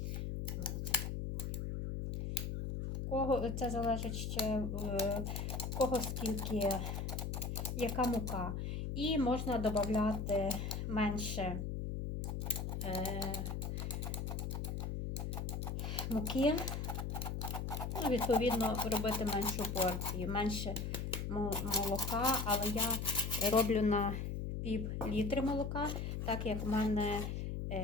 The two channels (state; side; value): noise; left; hum, 3 dB below the sound